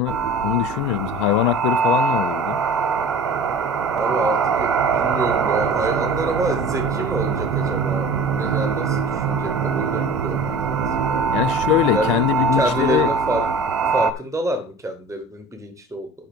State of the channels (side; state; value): both; normal; correlation 0.40